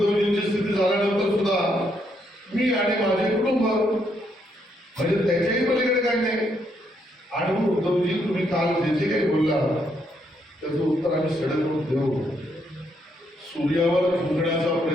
स्थिती झाल्यानंतर सुद्धा मी आणि माझे कुटुंब म्हणजे त्याच्याही पलीकडे काही नाही. आणि मग उद्धवजी तुम्ही काल जे काही बोलला त्याचं उत्तर आम्ही सडक देऊ. सूर्यावर थुंकण्याचा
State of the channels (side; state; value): both; normal; correlation 0.75